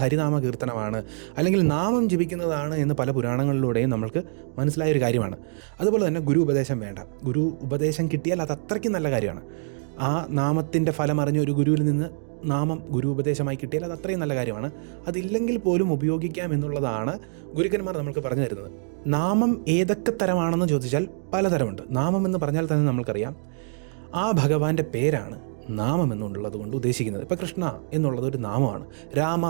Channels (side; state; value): left; silent; digital silence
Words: ഹരിനാമ കീർത്തനമാണ്, അല്ലെങ്കിൽ നാമം ജപിക്കുന്നതാണ് എന്ന് പല പുരാണങ്ങളിലൂടെയും നമ്മൾക്ക് മനസ്സിലായൊരു കാര്യമാണ്. അതുപോലെ തന്നെ ഗുരു ഉപദേശം വേണ്ട. ഗുരു ഉപദേശം കിട്ടിയാൽ അത് അത്രയ്ക്കും നല്ല കാര്യമാണ്. ആ നാമത്തിൻ്റെ ഫലം അറിഞ്ഞ ഒരു ഗുരുവിൽ നിന്ന് നാമം ഗുരു ഉപദേശമായി കിട്ടിയാൽ അത് അത്രയും നല്ല കാര്യമാണ്. അതില്ലെങ്കിൽ പോലും ഉപയോഗിക്കാം എന്നുള്ളതാണ് ഗുരുക്കന്മാർ നമുക്ക് പറഞ്ഞു തരുന്നത്. നാമം ഏതൊക്കെ തരമാണെന്ന് ചോദിച്ചാൽ പലതരമുണ്ട്. നാമം എന്ന് പറഞ്ഞാൽ തന്നെ നമ്മൾക്കറിയാം ആ ഭഗവാന്റെ പേരാണ് നാമം എന്നുള്ളത് കൊണ്ട് ഉദ്ദേശിക്കുന്നത്. ഇപ്പോൾ കൃഷ്ണ എന്നുള്ളത് ഒരു നാമമാണ്, രാമ